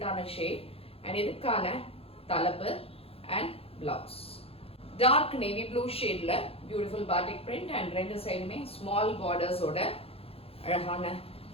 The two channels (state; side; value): late; right; 0.28 ms